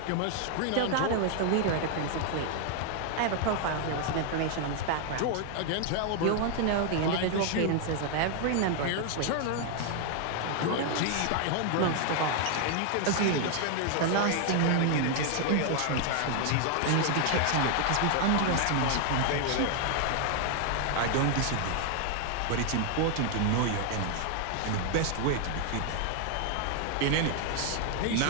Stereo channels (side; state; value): both; different; correlation 0.00